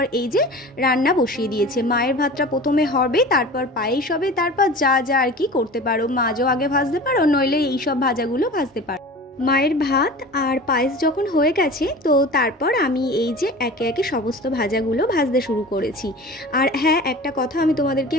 এই যে রান্না বসিয়ে দিয়েছে। মায়ের ভাতটা প্রথমে হবে, তারপর পায়েস হবে, তারপর যা যা আর কি করতে পারো, মাছও আগে ভাজতে পারো, নইলে এইসব ভাজাগুলো ভাজতে পারো। মায়ের ভাত আর পায়েস যখন হয়ে গেছে, তো তারপর আমি এই যে একে একে সমস্ত ভাজাগুলো ভাজতে শুরু করেছি। আর হ্যাঁ, একটা কথা আমি তোমাদেরকে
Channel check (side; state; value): both; normal; correlation 0.37